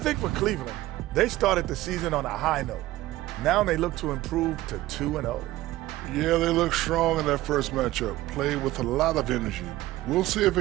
for Cleveland, they started the season on a high note. Now they look to improve to 2-0. Yeah, they look strong in that first matchup. Played with a lot of energy. We'll see if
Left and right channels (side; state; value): left; quieter; 16.6 dB